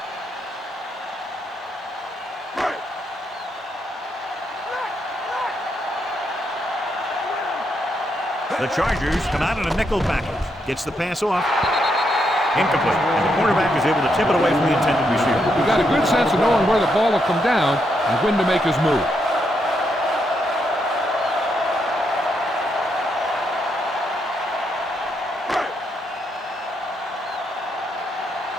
The Chargers come out in a nickel package. Gets the pass off. Incomplete. And the quarterback is able to tip it away from the intended receiver. He got a good sense of knowing where the ball will come down and when to make his move.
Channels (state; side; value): normal; both; correlation 0.79